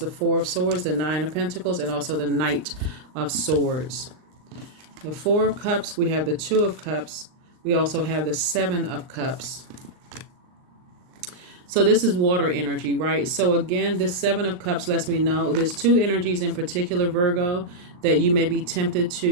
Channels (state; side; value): late; left; 39 ms